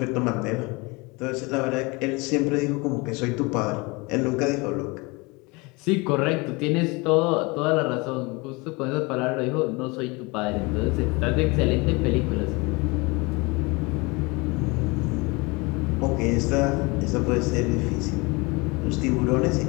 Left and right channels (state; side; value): quieter; right; 26.3 dB